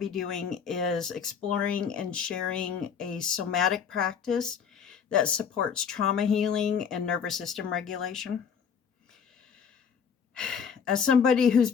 doing is exploring and sharing a somatic practice that supports trauma healing and nervous system regulation. As somebody who's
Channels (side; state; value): right; quieter; 6.9 dB